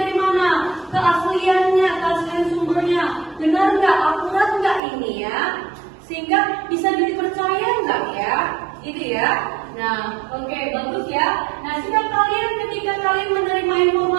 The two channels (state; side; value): drops out; left; at 4.8 s